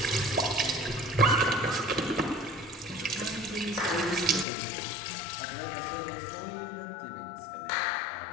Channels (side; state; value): right; drops out; at 4.5 s